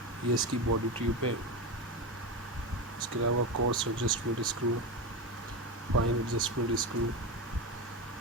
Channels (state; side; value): normal; both; correlation 0.18